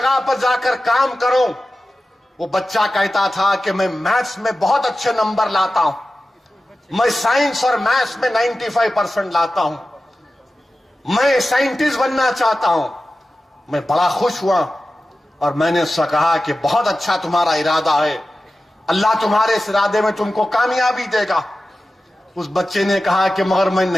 पर जाकर काम करूं। वो बच्चा कहता था कि मैं मैथ्स में बहुत अच्छे नंबर लाता हूं, मैं साइंस और मैथ्स में 95% लाता हूं, मैं साइंटिस्ट बनना चाहता हूं। मैं बड़ा खुश हुआ और मैंने उससे कहा कि बहुत अच्छा तुम्हारा इरादा है, अल्लाह तुम्हारे इस इरादे में तुमको कामयाबी देगा। उस बच्चे ने कहा कि मगर मैं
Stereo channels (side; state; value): both; normal; correlation 0.94